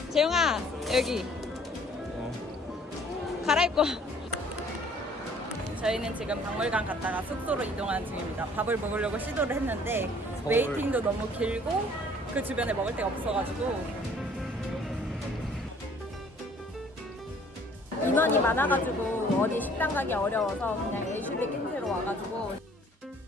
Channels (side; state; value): both; normal; correlation 0.56